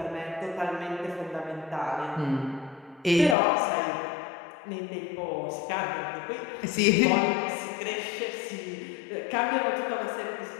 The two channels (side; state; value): right; drops out; at 3.4 s